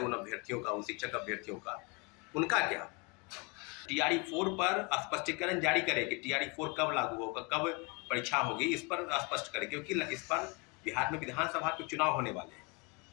अभ्यर्थियों का, उन शिक्षक अभ्यर्थियों का, उनका क्या? TRE 4 पर स्पष्टीकरण जारी करे कि TRE 4 कब लागू होगा, कब परीक्षा होगी, इस पर स्पष्ट करे, क्योंकि इस पर बिहार में विधानसभा के चुनाव होने वाले हैं।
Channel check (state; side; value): quieter; right; 30.2 dB